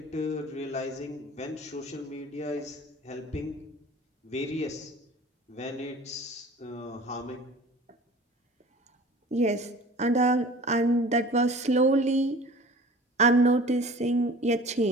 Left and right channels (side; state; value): both; normal; correlation 0.43